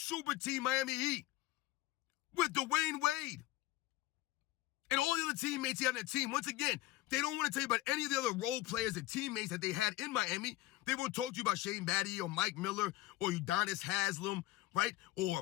team Miami Heat with Dwayne Wade. And all the other teammates he had on that team. Once again, they don't want to tell you about any of the other role players and teammates that they had in Miami. They won't talk to you about Shane Battier or Mike Miller or Udonis Haslem, right? Or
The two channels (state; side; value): quieter; right; 17.0 dB